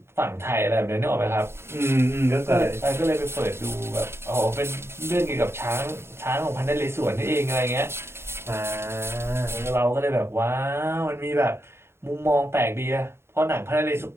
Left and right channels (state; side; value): late; left; 0.12 ms